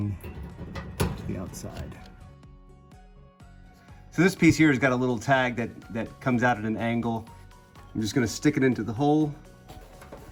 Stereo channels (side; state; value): both; identical; correlation 1.00